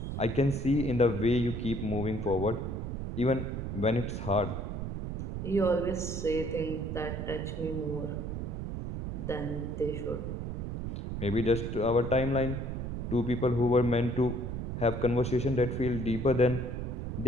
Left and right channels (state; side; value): noise; right; rumble, 4 dB below the sound